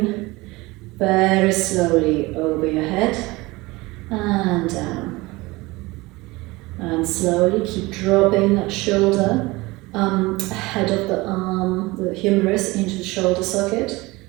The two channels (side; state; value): left; quieter; 22.0 dB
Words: very slowly over your head and down. And slowly keep dropping that shoulder head of the arm, the humerus, into the shoulder socket,